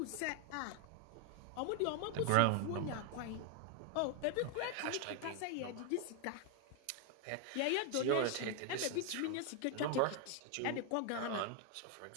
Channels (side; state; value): both; different; correlation 0.00